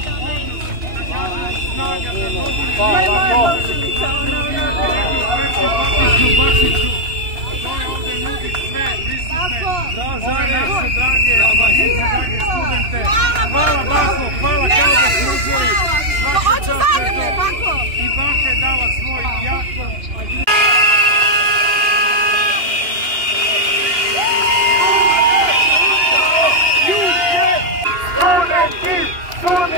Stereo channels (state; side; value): late; left; 2.9 ms